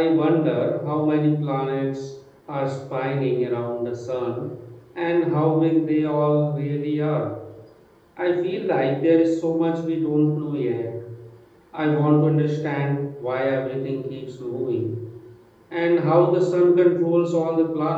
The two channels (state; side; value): identical; both; correlation 1.00